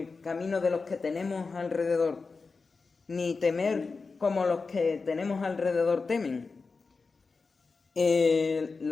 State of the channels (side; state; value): right; quieter; 4.3 dB